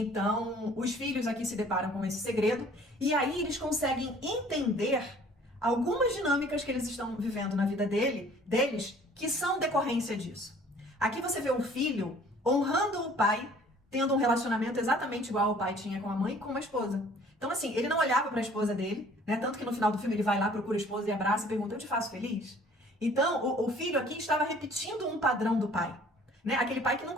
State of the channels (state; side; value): normal; both; correlation 0.54